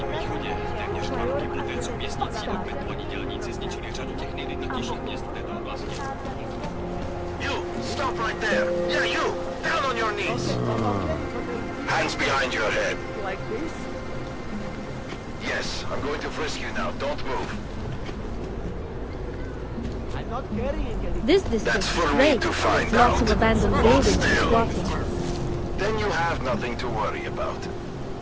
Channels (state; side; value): identical; both; correlation 1.00